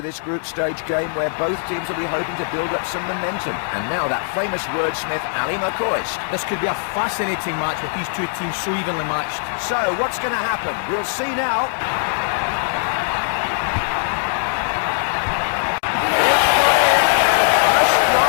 this group stage game where both teams will be hoping to build up some momentum. And now that famous wordsmith, Ali McCoist. This could be a fascinating match with these two teams so evenly matched. So, what's going to happen? We'll see now. It's got in. The first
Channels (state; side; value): silent; right; digital silence